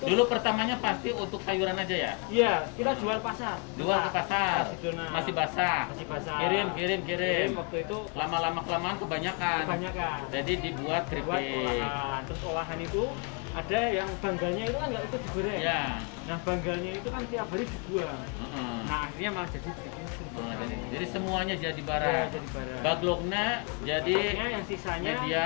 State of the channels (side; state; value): right; quieter; 35.3 dB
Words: dulu pertamanya pasti untuk sayuran aja ya? Iya, kita jual pasar. Jual ke pasar. Masih basah. Kirim. Waktu itu lama-lama kelamaan kebanyakan. Jadi dibuat keripik. Terus olahan itu ada yang banggalnya itu kan nggak ikut digoreng. Ya. Nah banggalnya itu kan tiap hari dibuang. Nah akhirnya malah jadi semuanya jadi barang. Bagloknya jadi yang sisanya